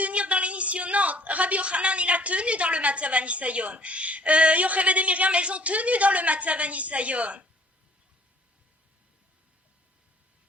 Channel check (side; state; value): both; normal; correlation 0.56